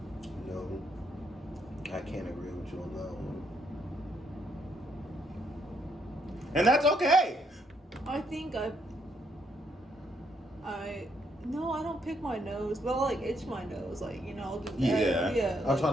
No, I can't agree with you on that one. And that's okay. I think no, I don't pick my nose, but I like itch my nose, like, you know, I'll do that. Yeah. I'll try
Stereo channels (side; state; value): both; normal; correlation 0.73